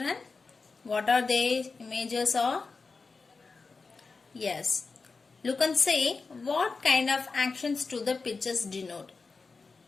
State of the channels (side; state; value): right; quieter; 4.3 dB